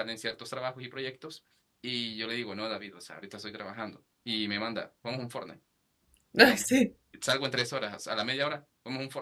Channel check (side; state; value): both; identical; correlation 1.00